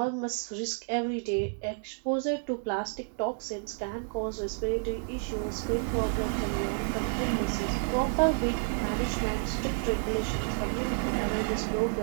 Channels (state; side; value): silent; left; 58 dB below the other